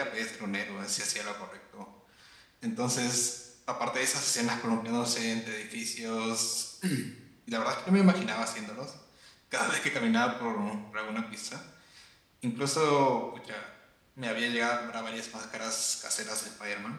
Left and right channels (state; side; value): identical; both; correlation 1.00